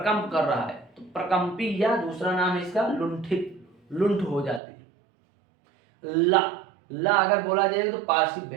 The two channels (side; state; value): left; drops out; at 4.6 s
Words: कर रहा है, तो प्रकंपी, या दूसरा नाम है इसका लुंठित, लुंठ हो जाती है। ला अगर बोला जाए तो पार्श्विक